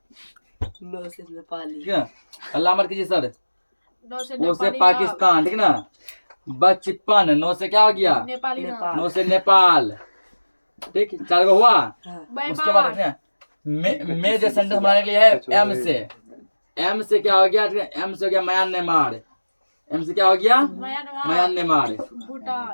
नो से नेपाली, ठीक है। अल्लाह मत कीजिए सर। पो से पाकिस्तान, ठीक ना। बचपन, नो से क्या हो गया? नो से नेपाल, ठीक। 4 गो हुआ। उसके बाद देखिए, में जो सेंटेंस बनाने के लिए है एम से। एम से क्या हो गया? एम से हो गया म्यांमार। एम से क्या हो गया? म्यांमार,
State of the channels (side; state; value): both; inverted; correlation -1.00